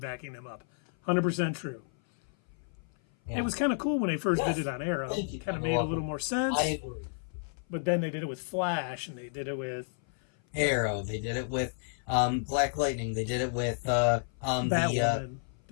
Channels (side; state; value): right; silent; 55 dB below the other